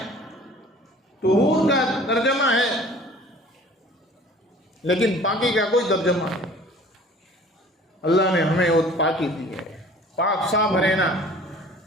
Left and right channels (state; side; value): normal; both; correlation 0.48